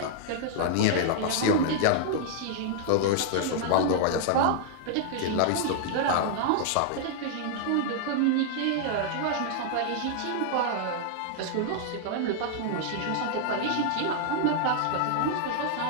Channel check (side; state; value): both; different; correlation -0.01